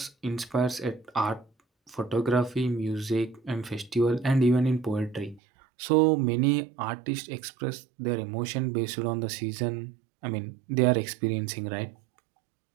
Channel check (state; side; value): drops out; left; at 5.4 s